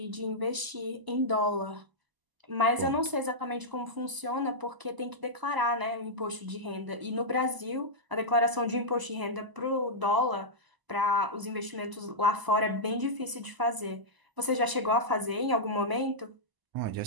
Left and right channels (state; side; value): late; left; 1.0 ms